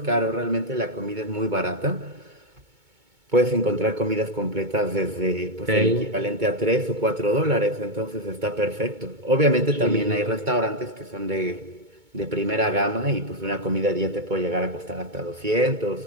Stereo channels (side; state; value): left; late; 2.2 ms